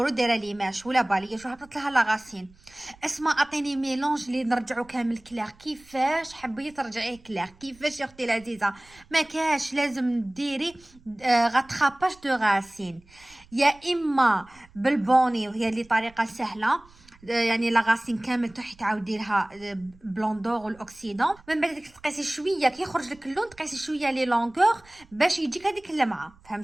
دايره ليماش ولا باليه شو هبطت لها لاغاسين. اسمع اعطيني ميلونج اللي نرجعو كامل كلير. كيفاش حبيتي ترجعيه كلير؟ كيفاش يا اختي العزيزه؟ ما كاش لازم ديري غاتراباج دو غاسين، يا اما بالبوني وهي اللي طريقه سهله، يعني لاغاسين كامل تروحي تعاودي لها بلوندور والاكسيدون. من بعد تقيسي شويه كي يخرج لك اللون، تقيسي شويه لي لونغور باش يجيك هذيك اللمعه،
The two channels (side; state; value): right; noise; rumble, 27 dB below the sound